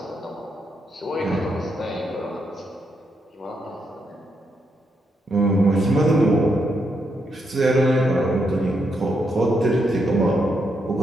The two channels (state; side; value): normal; both; correlation 0.80